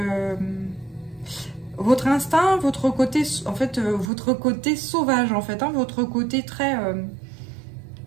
instinct, votre côté, en fait, votre côté sauvage, en fait, hein, votre côté très...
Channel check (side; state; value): left; drops out; at 4.1 s